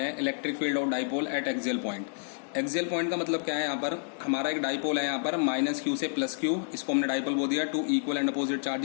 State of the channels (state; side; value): silent; right; 58 dB below the other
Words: हैं electric field of dipole at axial point. Axial point का मतलब क्या है? यहाँ पर हमारा एक डाइपोल है, यहाँ पर माइनस क्यू से प्लस क्यू, इसको हमने डाइपोल बोल दिया। Two equal and opposite